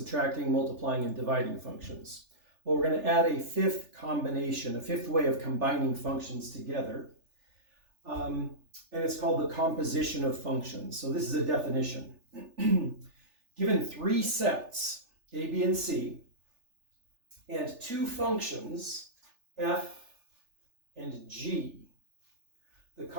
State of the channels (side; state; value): left; late; 3.4 ms